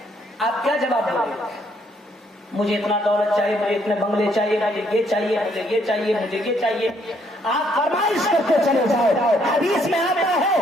آپ کیا جواب دیں گے؟ مجھے اتنا دولت چاہیے، مجھے اتنے بنگلے چاہیے، مجھے یہ چاہیے، مجھے یہ چاہیے، مجھے یہ چاہیے، آپ فرمائش کرتے چلے جاؤ۔ حدیث میں آتا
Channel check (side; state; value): both; normal; correlation 0.69